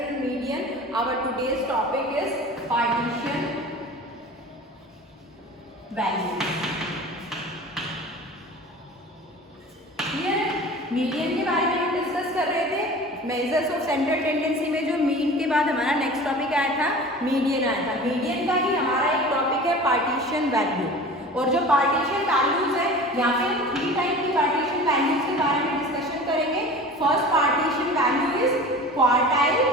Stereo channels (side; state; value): both; normal; correlation 0.38